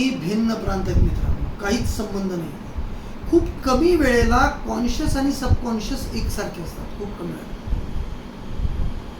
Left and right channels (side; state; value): both; identical; correlation 1.00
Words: भिन्न प्रांत आहेत मित्रांनो, काहीच संबंध नाही. खूप कमी वेळेला कॉन्शियस आणि सबकॉन्शियस एकसारखे असतात. खूप कमी वेळेला